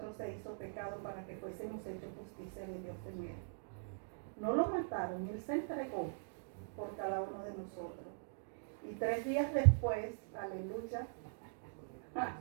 se hizo pecado para que fuésemos hechos justicia de Dios en Él. No lo mataron, Él se entregó por cada uno de nosotros. Y 3 días después, aleluya,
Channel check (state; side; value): silent; left; digital silence